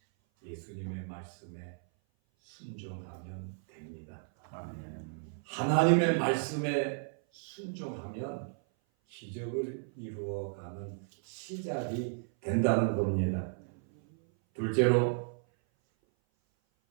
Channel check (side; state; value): left; silent; 55 dB below the other